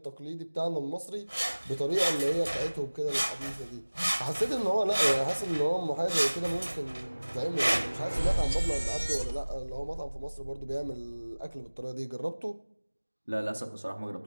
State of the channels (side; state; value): both; inverted; correlation -1.00